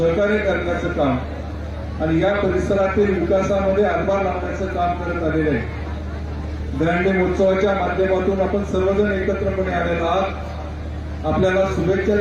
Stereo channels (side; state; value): both; identical; correlation 1.00